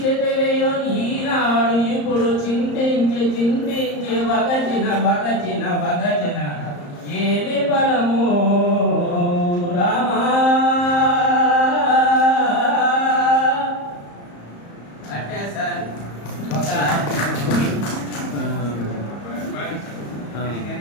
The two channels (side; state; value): right; late; 34 ms